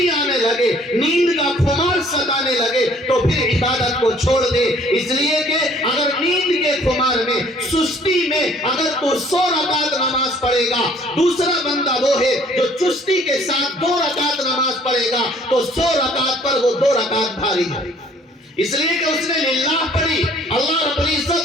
آنے لگے, نیند کا خمار ستانے لگے, تو پھر عبادت کو چھوڑ دے. اس لیے کہ اگر نیند کے خمار میں, سستی میں اگر تو 100 رکعت نماز پڑھے گا, دوسرا بندہ وہ ہے جو چستی کے ساتھ 2 رکعت نماز پڑھے گا, تو 100 رکعت پر وہ 2 رکعت بھاری ہے. اس لیے کہ اس نے للہ پڑھی, اللہ رب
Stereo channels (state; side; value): normal; both; correlation 0.58